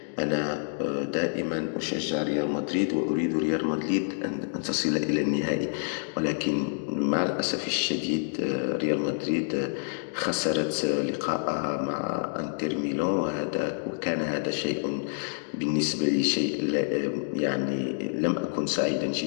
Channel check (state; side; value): silent; right; digital silence